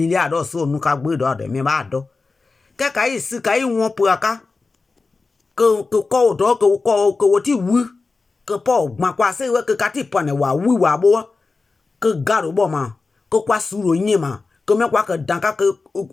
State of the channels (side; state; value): right; quieter; 4.0 dB